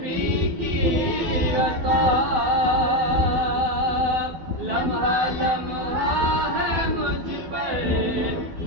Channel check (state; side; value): late; left; 12 ms